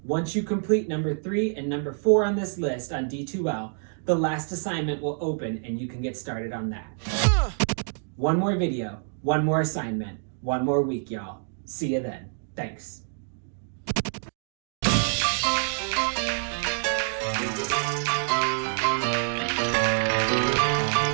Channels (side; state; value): left; silent; 60 dB below the other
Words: once you complete number 3 and number 4 on this list on D2L, the last assignment will open and you can get started on that. 1 more video, 1 more assignment, 1 more week, y'all. See you then. Thanks.